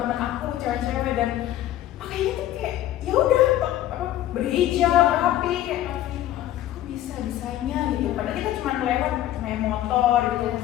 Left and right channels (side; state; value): right; quieter; 13.4 dB